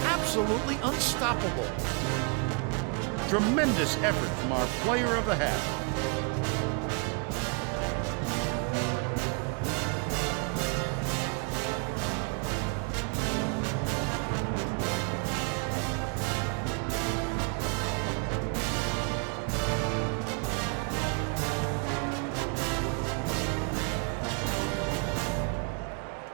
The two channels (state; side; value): quieter; left; 35.9 dB